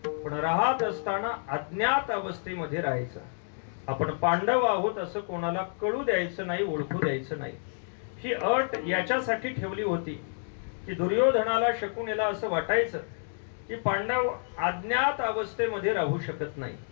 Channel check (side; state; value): right; silent; digital silence